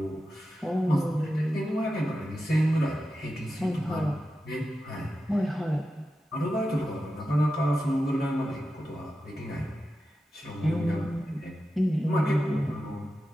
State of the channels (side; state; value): both; normal; correlation 0.91